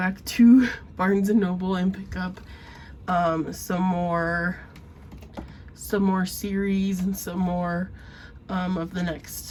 to Barnes & Noble and pick up some more series and some more of the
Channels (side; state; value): both; identical; correlation 1.00